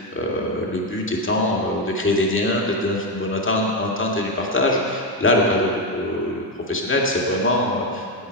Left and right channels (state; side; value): normal; both; correlation 0.07